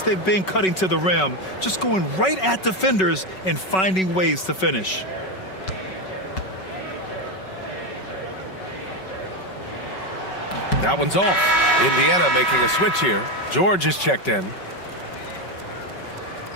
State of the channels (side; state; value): right; late; 5.3 ms